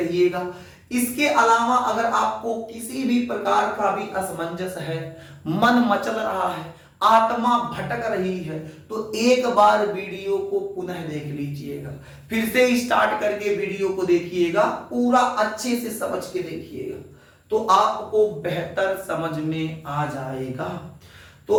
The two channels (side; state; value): both; identical; correlation 1.00